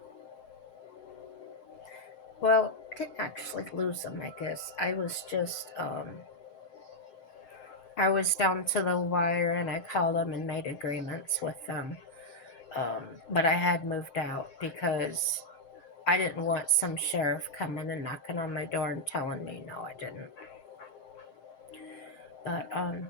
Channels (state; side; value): late; right; 7.7 ms